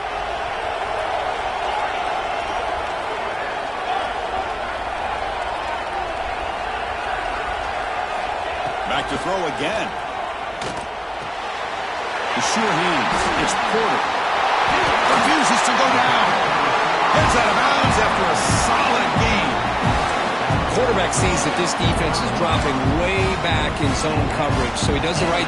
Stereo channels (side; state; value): both; identical; correlation 1.00